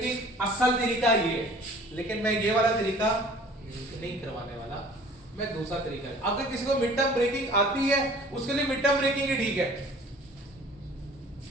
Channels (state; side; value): normal; both; correlation 0.49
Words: असल तरीका ये है, लेकिन मैं ये वाला तरीका नहीं करवाने वाला, मैं दूसरा तरीका है। अगर किसी को मिड टर्म ब्रेकिंग आती है, उसके लिए मिड टर्म ब्रेकिंग ही ठीक है,